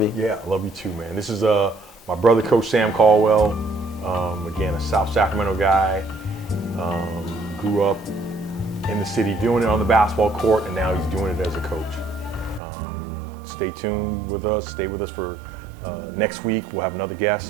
you. Yeah, I love you too, man. This is my brother, Coach Sam Caldwell. Again, a South Sacramento guy. Grew up in the city doing it on the basketball court, and now he's doing it as a coach. Stay tuned with us. Stay with us for next week. We'll have another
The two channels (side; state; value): left; drops out; at 12.6 s